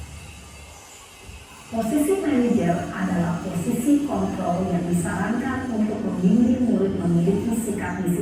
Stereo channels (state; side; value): identical; both; correlation 1.00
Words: Posisi manajer adalah posisi kontrol yang disarankan untuk membimbing murid memiliki sikap